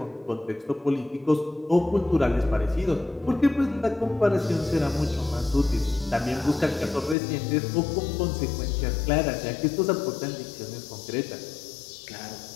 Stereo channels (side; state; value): right; drops out; at 7.2 s